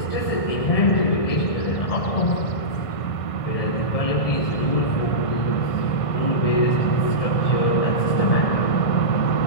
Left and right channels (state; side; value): late; right; 1.5 ms